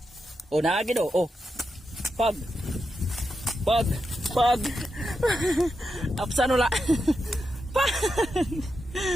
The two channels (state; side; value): normal; both; correlation 0.86